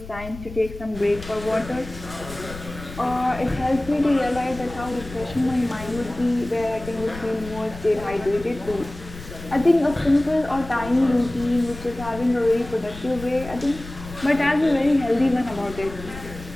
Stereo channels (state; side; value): noise; left; rumble, 14 dB below the sound